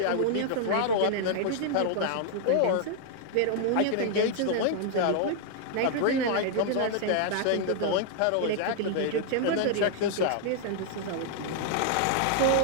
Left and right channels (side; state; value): both; different; correlation -0.01